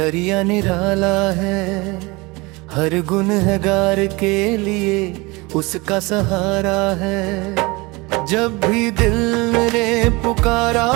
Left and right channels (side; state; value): left; quieter; 24.6 dB